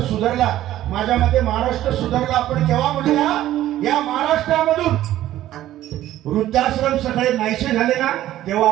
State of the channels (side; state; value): left; quieter; 13.6 dB